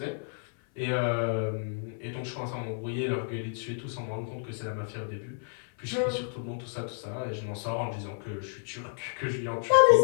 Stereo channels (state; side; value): silent; right; 58 dB below the other